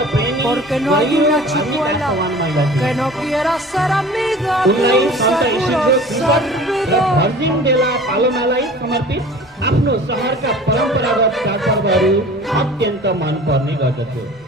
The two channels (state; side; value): normal; both; correlation 0.43